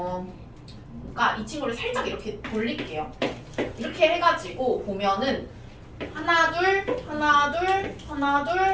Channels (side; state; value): both; identical; correlation 1.00